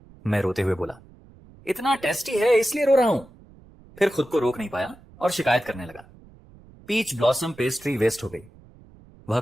मैं रोते हुए बोला, इतना टेस्टी है इसलिए रो रहा हूं। फिर खुद को रोक नहीं पाया और शिकायत करने लगा। पीच ब्लॉसम पेस्ट्री वेस्ट हो गई। वह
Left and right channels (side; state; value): right; noise; rumble, 24 dB below the sound